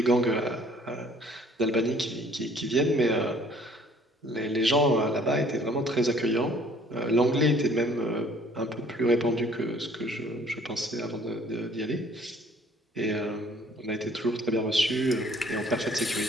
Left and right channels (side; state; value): both; normal; correlation 0.57